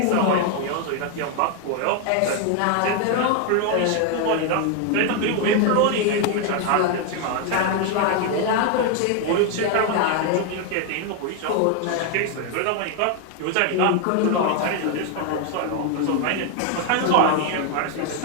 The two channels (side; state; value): both; different; correlation 0.01